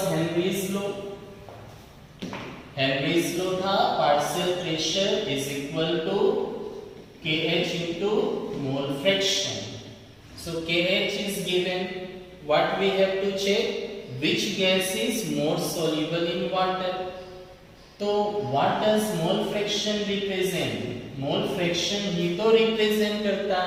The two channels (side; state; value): both; identical; correlation 1.00